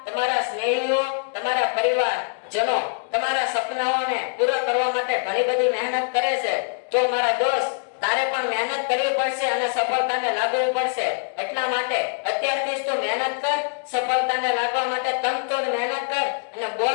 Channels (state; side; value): silent; right; digital silence